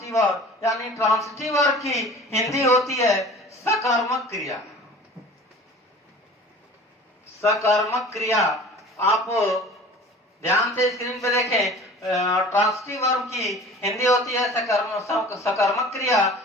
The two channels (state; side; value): normal; both; correlation 0.43